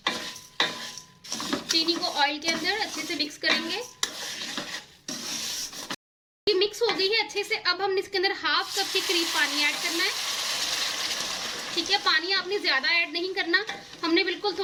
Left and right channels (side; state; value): both; identical; correlation 1.00